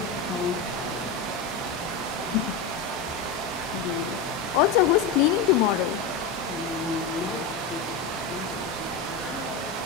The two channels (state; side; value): quieter; right; 4.9 dB